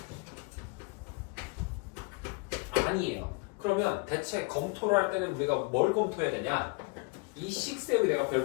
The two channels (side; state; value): right; quieter; 29.8 dB